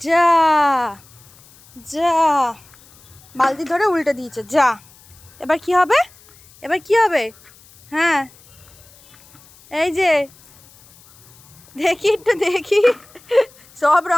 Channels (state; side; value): noise; left; hiss, 26 dB below the sound